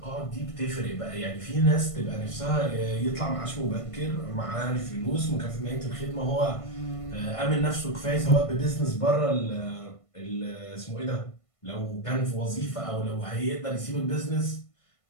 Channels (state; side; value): late; right; 1.5 ms